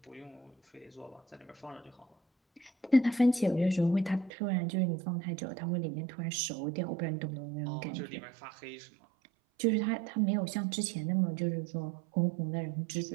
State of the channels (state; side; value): drops out; left; at 4.3 s